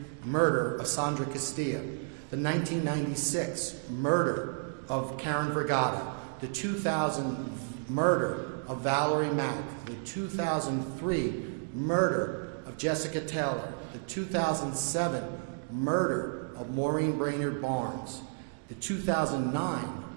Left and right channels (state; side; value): silent; left; digital silence